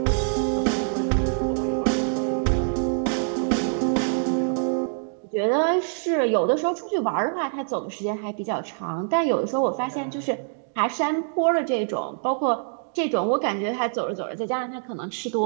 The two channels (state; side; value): silent; left; digital silence